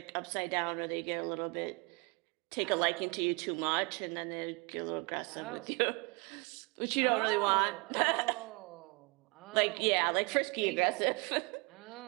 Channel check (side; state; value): left; quieter; 30.2 dB